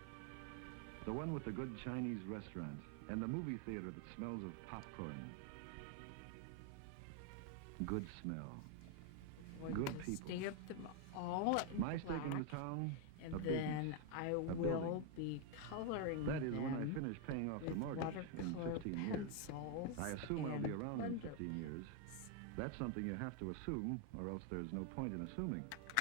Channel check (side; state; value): both; different; correlation 0.01